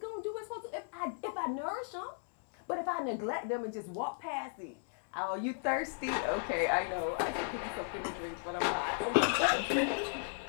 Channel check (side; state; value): right; silent; digital silence